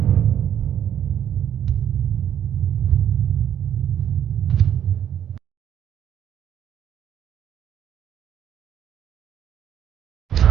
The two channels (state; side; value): quieter; left; 9.8 dB